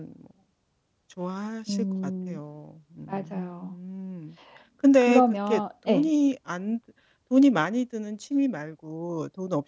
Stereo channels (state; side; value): identical; both; correlation 1.00